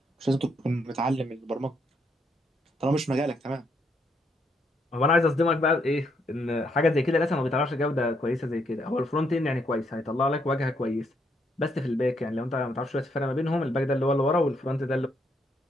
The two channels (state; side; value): normal; both; correlation 0.74